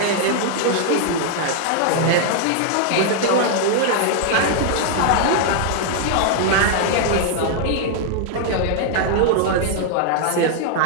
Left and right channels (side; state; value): both; different; correlation 0.00